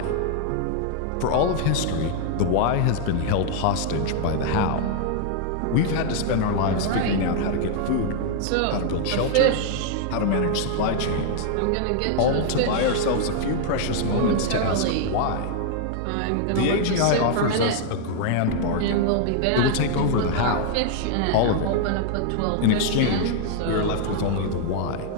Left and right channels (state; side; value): different; both; correlation 0.00